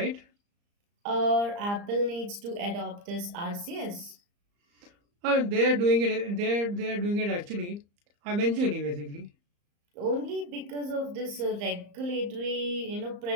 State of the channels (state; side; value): late; left; 34 ms